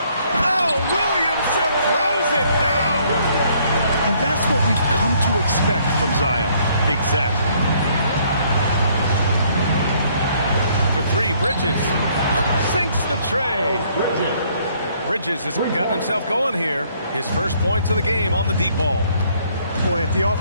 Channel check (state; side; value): inverted; both; correlation -0.65